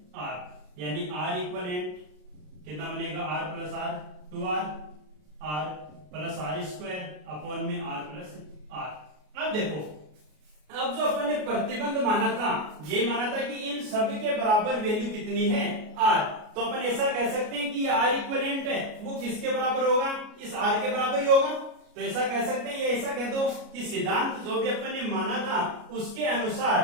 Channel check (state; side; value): late; left; 33 ms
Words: आर, यानी आर इक्वलेंट कितना बनेगा R plus R 2r R plus R square upon में आर प्लस आर। अब देखो, अब जो अपन ने प्रतिबंध माना था, ये माना था कि इन सब के बराबर वैल्यू कितनी है आर, तो अपन ऐसा कह सकते हैं कि आर इक्विवेलेंट है वो किसके बराबर होगा, इस आर के बराबर ही होगा। तो ऐसा कह सकते हैं, ये ऐसा कह दो कि सिद्धांत जो भी अपन ने माना था उसके